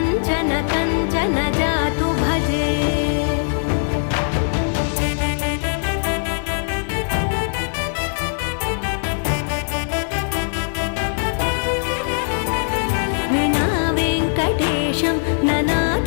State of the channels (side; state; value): right; silent; 65 dB below the other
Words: कञ्चन जातु भजे विना वेङ्कटेशं